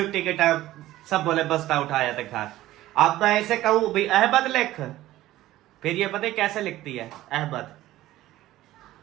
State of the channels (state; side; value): quieter; left; 15.4 dB